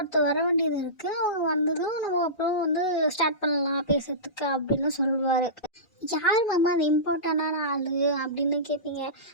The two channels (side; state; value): right; late; 2.4 ms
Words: வர வேண்டியது இருக்குது, அவங்க வந்ததும் நம்ம அப்புறம் வந்து ஸ்டார்ட் பண்ணலாம் பேசுறதுக்கு அப்படின்னு சொல்லுவார். யார் மாமா அந்த இம்பார்ட்டண்டான ஆள் அப்படின்னு கேட்பீங்க.